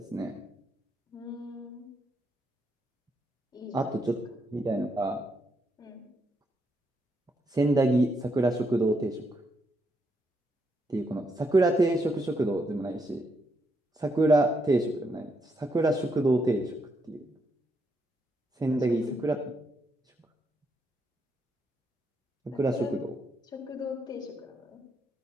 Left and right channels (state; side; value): normal; both; correlation 0.78